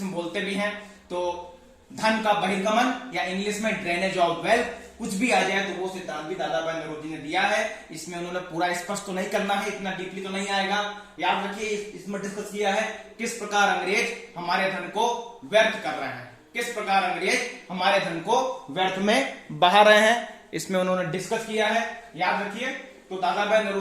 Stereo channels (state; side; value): identical; both; correlation 1.00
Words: में बोलते भी हैं। तो धन का बहिर्गमन या इंग्लिश में ड्रेनेज ऑफ वेल्थ, कुछ भी आ जाए तो वो सिद्धांत भी दादा भाई नौरोजी ने दिया है। इसमें उन्होंने पूरा स्पष्ट तो नहीं करना है, इतना डीपली तो नहीं आएगा। याद रखिए, इसमें डिस्कस किया है किस प्रकार अंग्रेज हमारे धन को व्यर्थ कर रहे हैं, किस प्रकार अंग्रेज हमारे धन को व्यर्थ में बहा रहे हैं, इसमें उन्होंने डिस्कस किया है। याद रखिए, तो दादा भाई